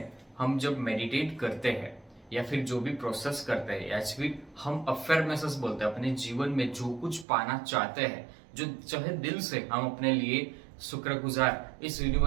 हम जब मेडिटेट करते हैं या फिर जो भी प्रोसेस करते हैं, या फिर हम अफर्मेशंस बोलते हैं, अपने जीवन में जो कुछ पाना चाहते हैं, जो चाहे दिल से हम अपने लिए शुक्रगुजार इस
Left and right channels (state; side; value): drops out; left; at 7.2 s